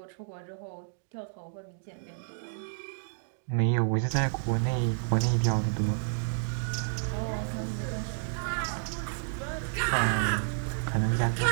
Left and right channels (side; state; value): left; silent; digital silence